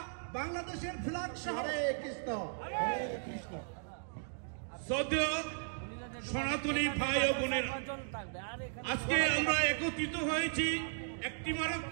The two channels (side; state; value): left; silent; digital silence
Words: বাংলাদেশের ফ্ল্যাগ সহ শ্রদ্ধেয় সনাতনী ভাই ও বোনেরা, আজকে আমরা একত্রিত হয়েছি